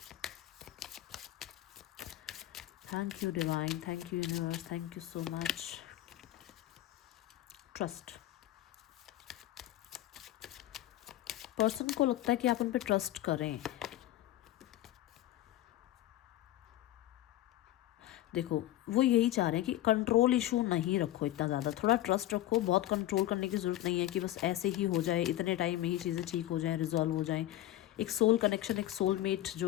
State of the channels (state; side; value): quieter; right; 14.3 dB